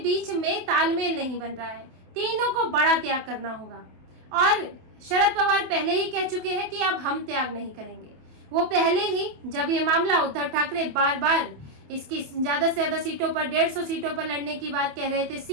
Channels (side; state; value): left; late; 27 ms